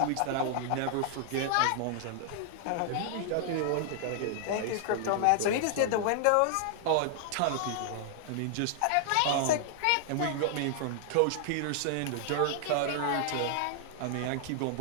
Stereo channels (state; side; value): different; both; correlation -0.01